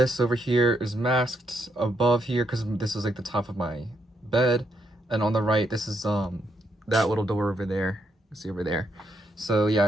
over here is masked above here because this is like the top of my bed. And on the right, this is that little door over there. You see over there. So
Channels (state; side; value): normal; both; correlation 0.78